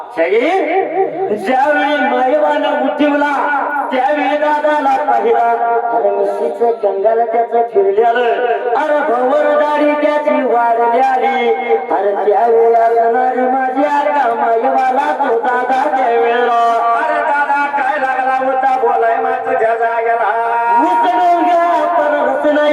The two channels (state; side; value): identical; both; correlation 1.00